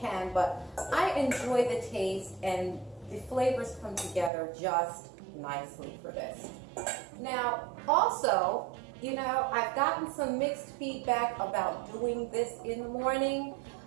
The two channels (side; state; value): left; drops out; at 4.3 s